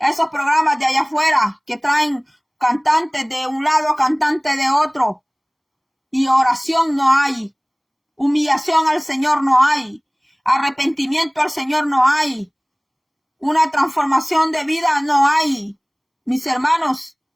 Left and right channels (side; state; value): both; identical; correlation 1.00